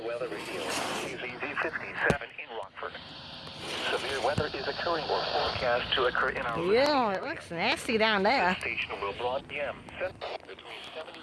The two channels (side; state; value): both; identical; correlation 1.00